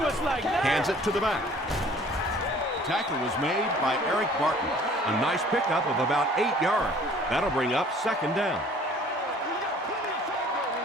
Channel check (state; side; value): normal; both; correlation 0.53